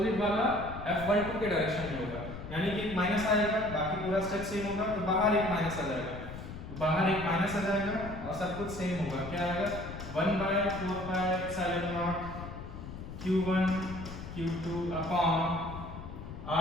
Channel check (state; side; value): noise; left; rumble, 10 dB below the sound